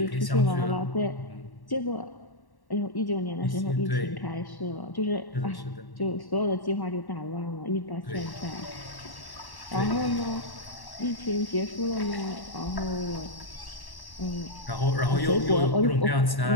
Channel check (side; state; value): right; late; 1.1 ms